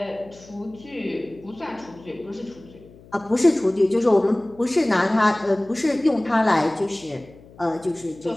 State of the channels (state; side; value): noise; left; hum, 23 dB below the sound